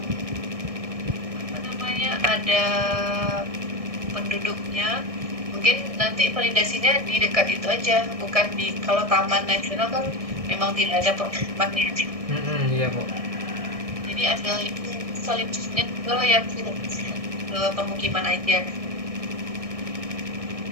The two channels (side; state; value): left; late; 1.6 ms